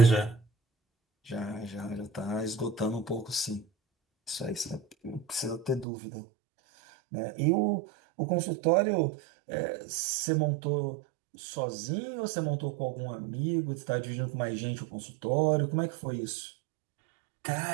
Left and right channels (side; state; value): left; drops out; at 5.9 s